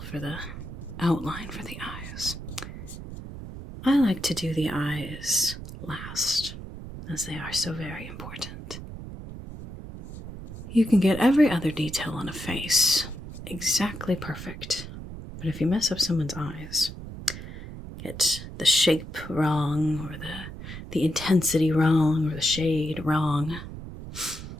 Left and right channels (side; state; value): right; noise; rumble, 11 dB below the sound